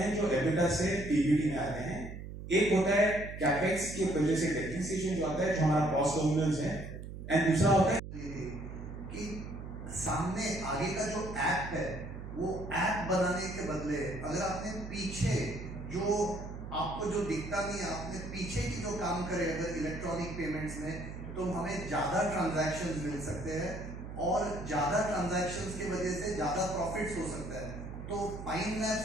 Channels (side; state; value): right; noise; hum, 10 dB below the sound